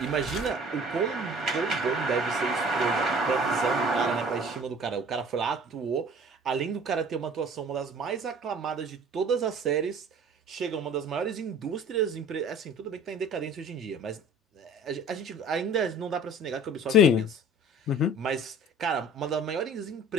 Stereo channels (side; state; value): both; normal; correlation 0.47